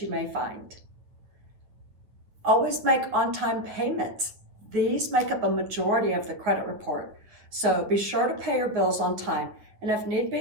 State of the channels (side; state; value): left; late; 9.4 ms